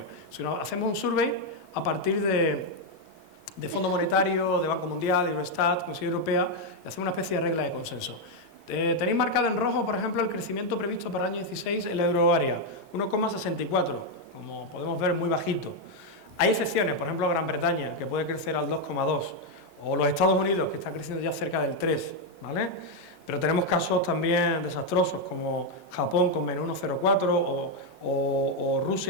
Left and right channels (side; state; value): left; late; 1.8 ms